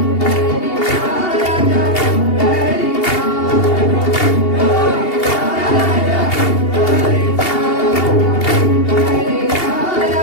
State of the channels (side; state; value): right; late; 2.8 ms